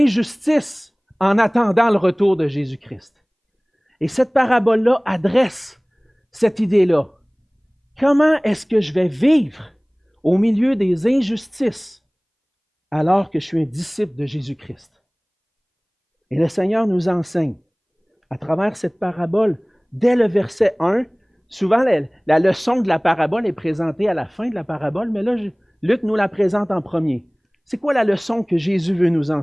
en attendant le retour de Jésus-Christ. Et cette parabole-là adresse cette idée-là. Comment est-ce que je vais vivre au milieu des injustices alors que je suis un disciple de Jésus-Christ? Et le Seigneur nous enseigne, à travers cette parabole, dès le verset 1, souvent la leçon de la parabole est présentée à la fin de la parabole, mais là, Luc nous la présente en premier. C'est quoi la leçon que Jésus veut nous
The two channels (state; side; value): identical; both; correlation 1.00